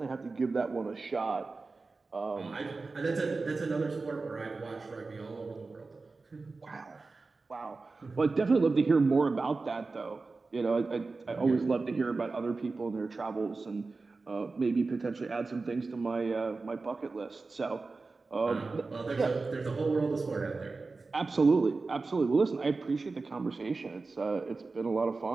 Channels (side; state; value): left; quieter; 3.9 dB